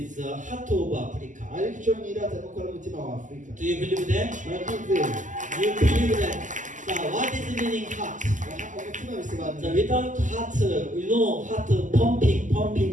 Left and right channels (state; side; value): late; left; 0.37 ms